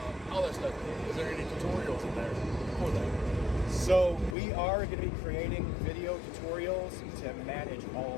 all that stuff. Is there any tutorials in there for that? So we are going to be creating video tutorials to manage all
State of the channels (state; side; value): drops out; right; at 4.4 s